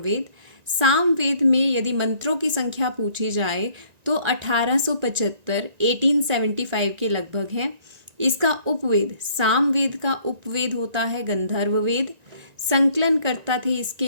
सामवेद में यदि मंत्रों की संख्या पूछी जाए तो 1875 1875 के लगभग है। इसका उपवेद, सामवेद का उपवेद होता है गंधर्ववेद। संकलन करता थे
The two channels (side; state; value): left; late; 1.9 ms